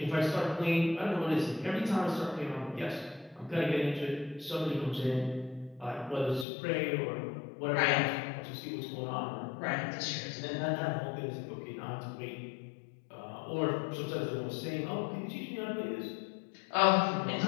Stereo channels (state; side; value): drops out; right; at 6.5 s